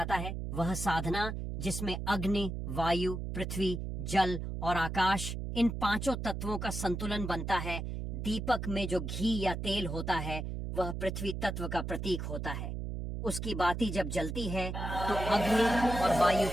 है। वह साधना जिसमें अग्नि, वायु, पृथ्वी, जल और आकाश, इन पांचों तत्वों का संतुलन बनता है। दीपक में जो घी या तेल होता है वह पृथ्वी तत्व का प्रतीक होता है। उसकी बाती जब जलती है तो अग्नि और वायु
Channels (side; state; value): right; noise; hum, 4 dB below the sound